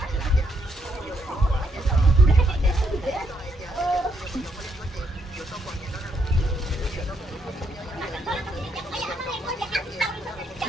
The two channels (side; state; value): both; normal; correlation 0.75